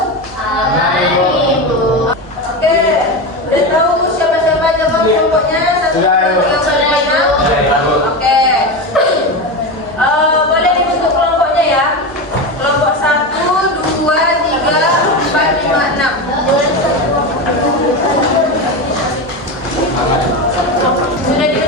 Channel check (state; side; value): normal; both; correlation 0.19